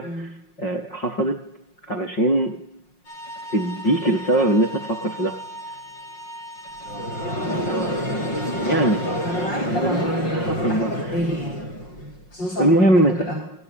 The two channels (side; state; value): right; late; 5.5 ms